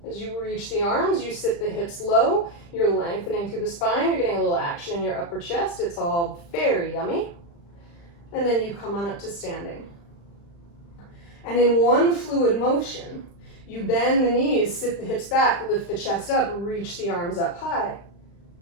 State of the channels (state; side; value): late; right; 35 ms